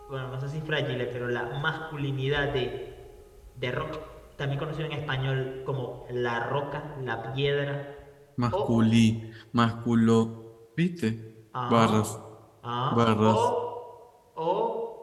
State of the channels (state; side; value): identical; both; correlation 1.00